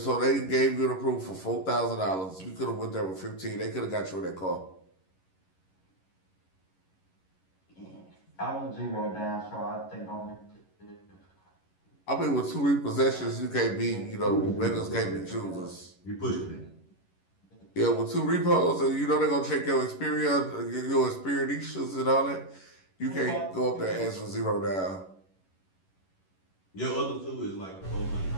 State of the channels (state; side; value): late; right; 11 ms